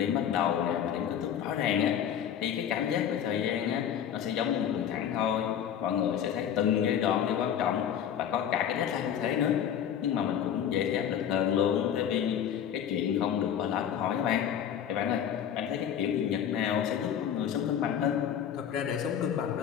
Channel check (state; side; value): quieter; right; 9.2 dB